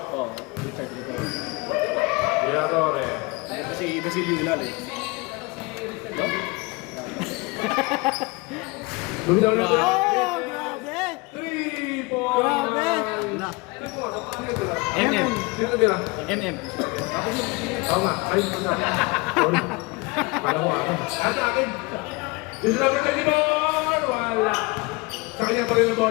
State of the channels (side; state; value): right; quieter; 25.8 dB